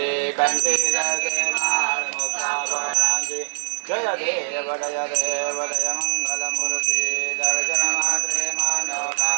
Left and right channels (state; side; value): silent; left; 64 dB below the other